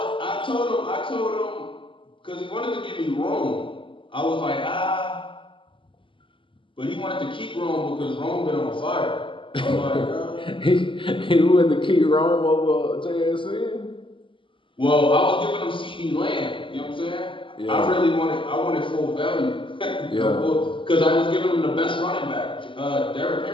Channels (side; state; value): right; late; 0.25 ms